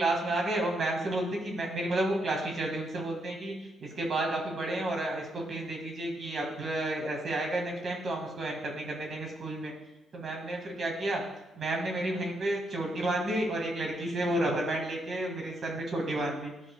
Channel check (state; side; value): normal; both; correlation 0.78